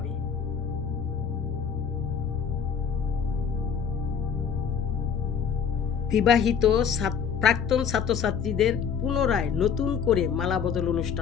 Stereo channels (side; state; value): right; quieter; 7.2 dB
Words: বিবাহিত প্রাক্তন ছাত্রছাত্রীদের পুনরায় নতুন করে মালা বদল